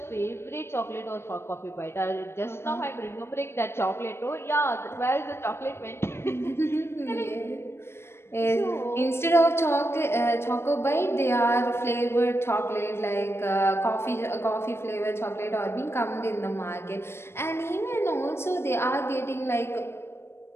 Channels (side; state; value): right; late; 0.12 ms